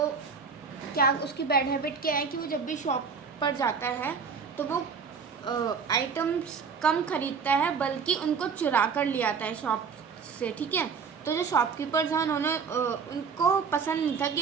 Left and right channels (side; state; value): left; quieter; 5.8 dB